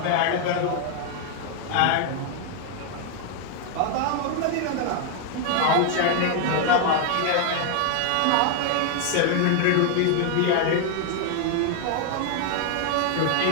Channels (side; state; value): both; different; correlation 0.00